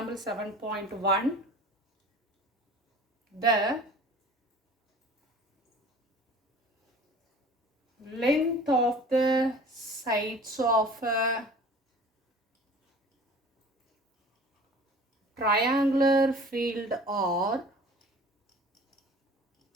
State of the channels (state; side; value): normal; both; correlation 0.45